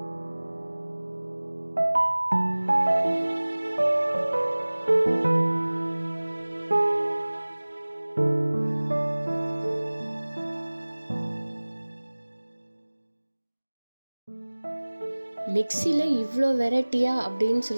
மிக்சியில் இவ்வளோ வெரைட்டியா அப்படின்னு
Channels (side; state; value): both; inverted; correlation -1.00